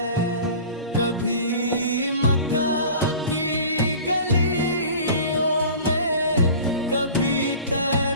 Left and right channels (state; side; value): inverted; both; correlation -0.40